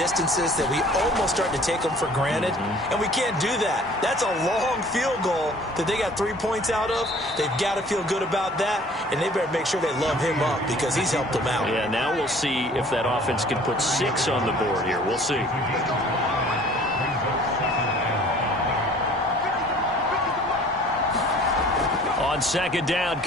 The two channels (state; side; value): normal; both; correlation 0.51